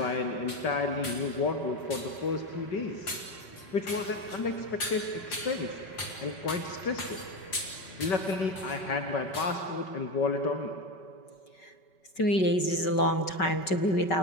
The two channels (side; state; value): right; late; 5.3 ms